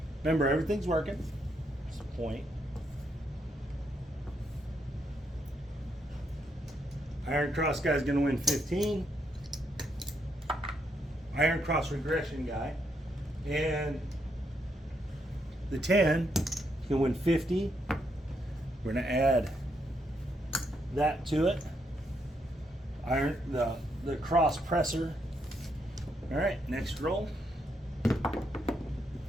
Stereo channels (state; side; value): normal; both; correlation 0.77